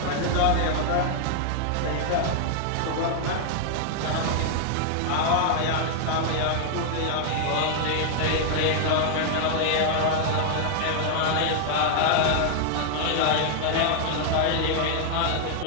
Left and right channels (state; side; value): different; both; correlation 0.00